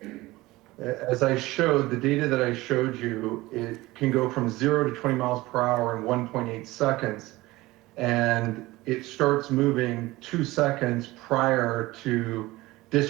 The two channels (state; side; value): quieter; left; 19.3 dB